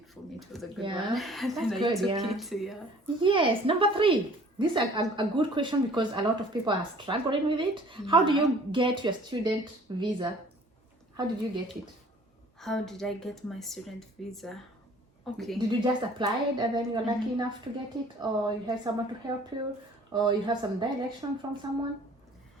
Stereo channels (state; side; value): normal; both; correlation 0.52